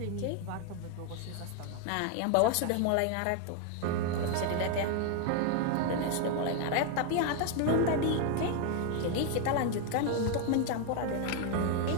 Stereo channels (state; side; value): different; both; correlation 0.01